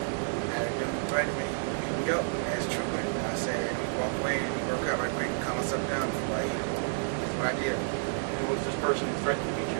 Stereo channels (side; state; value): left; silent; 58 dB below the other